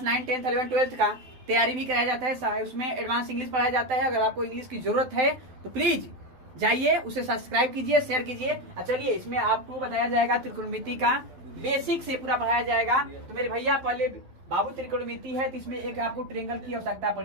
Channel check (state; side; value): late; left; 12 ms